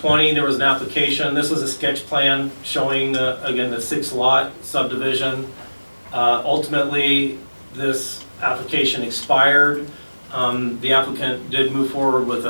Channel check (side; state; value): both; inverted; correlation -1.00